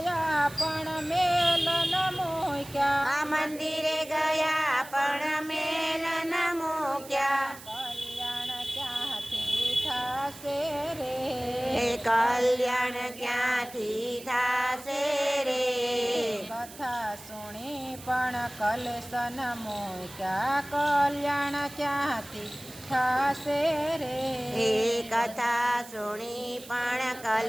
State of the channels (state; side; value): noise; right; hiss, 17 dB below the sound